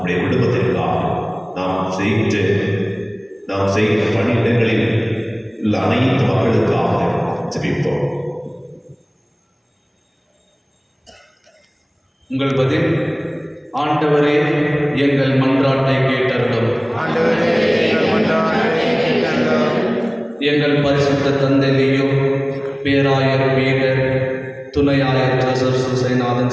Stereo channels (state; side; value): identical; both; correlation 1.00